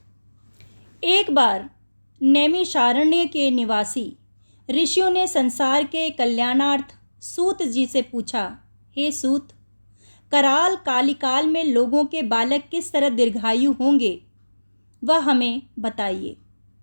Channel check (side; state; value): both; inverted; correlation -1.00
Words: एक बार नैमिषारण्य के निवासी ऋषियों ने संसार के कल्याणार्थ सूत जी से पूछा, हे सूत, कराल कालिकाल में लोगों के बालक किस तरह दीर्घायु होंगे, वह हमें बताइए।